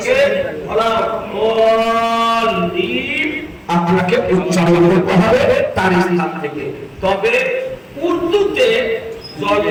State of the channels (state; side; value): identical; both; correlation 1.00